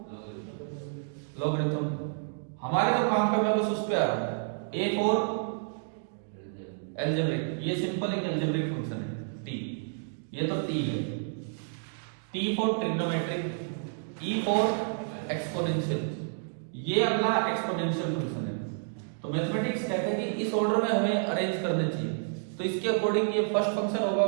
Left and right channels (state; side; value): silent; left; digital silence